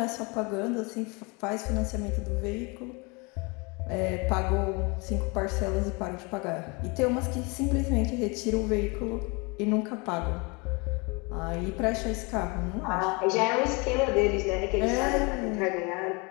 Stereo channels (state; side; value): quieter; right; 29.0 dB